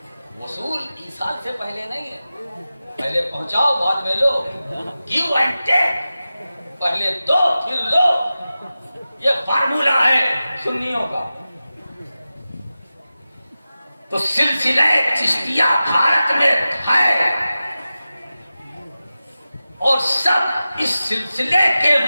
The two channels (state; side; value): inverted; both; correlation -0.94